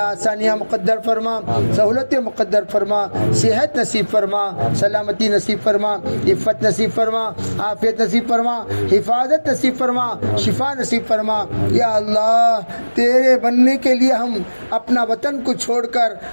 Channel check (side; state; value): both; inverted; correlation -1.00